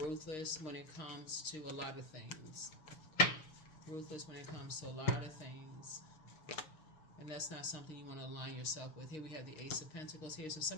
when it comes to a lot of things. Ruthless when it comes to a lot of things. And that's not something you want to align yourself with. Here we have the Ace of Pentacles here. So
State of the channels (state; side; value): late; right; 6.5 ms